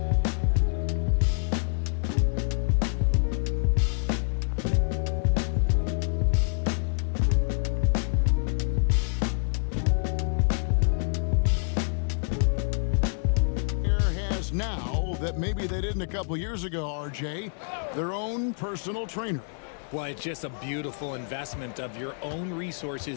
That maybe they didn't a couple years ago, RJ, their own personal trainer. Well, it's just a beautiful investment of your own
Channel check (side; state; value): right; silent; 58 dB below the other